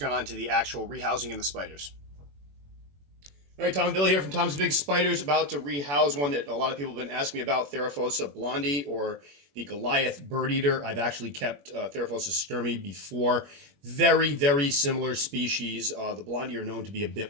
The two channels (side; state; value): left; late; 21 ms